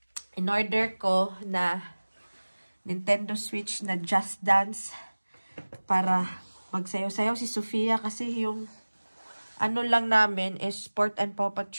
in-order ko na Nintendo Switch na Just Dance para magsayaw-sayaw si Sofia kasi yung lang namin is Sport and Paw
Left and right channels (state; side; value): inverted; both; correlation -1.00